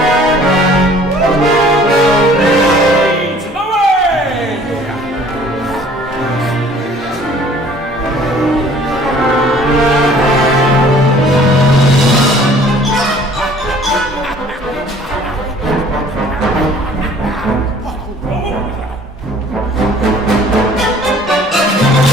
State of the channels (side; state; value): both; normal; correlation 0.53